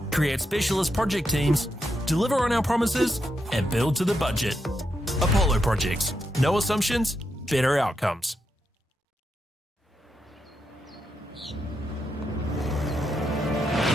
create specialist project teams, deliver on our promises, and build to the budget. Apollo Projects. No assumptions, better outcomes.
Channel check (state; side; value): normal; both; correlation 0.84